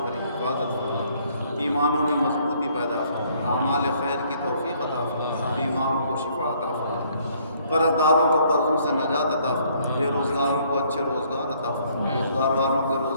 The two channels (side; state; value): both; inverted; correlation -0.64